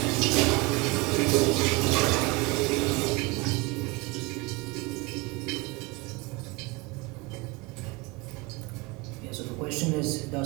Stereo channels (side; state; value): left; quieter; 24.3 dB